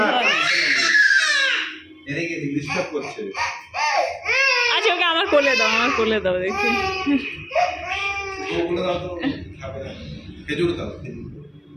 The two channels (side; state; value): both; identical; correlation 1.00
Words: আচ্ছা ওকে আমার কোলে দাও, আমার কোলে দাও দেখি।